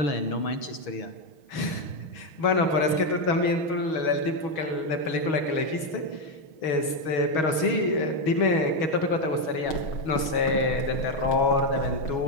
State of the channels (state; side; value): late; right; 6.3 ms